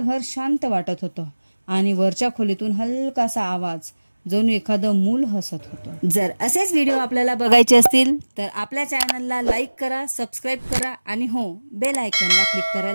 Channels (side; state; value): both; inverted; correlation -1.00